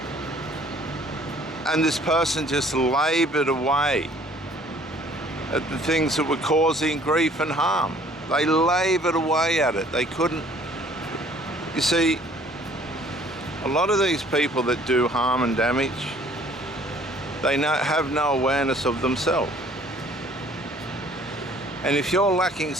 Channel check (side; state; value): both; normal; correlation 0.56